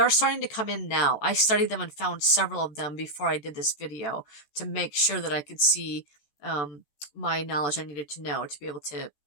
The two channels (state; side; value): late; right; 14 ms